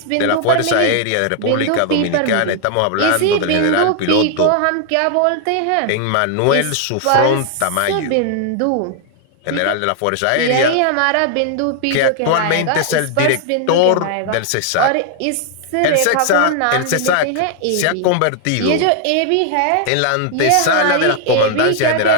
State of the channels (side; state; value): both; different; correlation 0.00